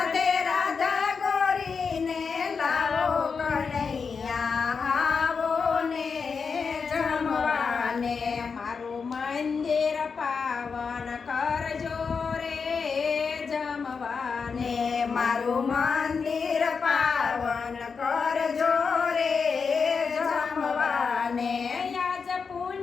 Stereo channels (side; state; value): right; quieter; 5.4 dB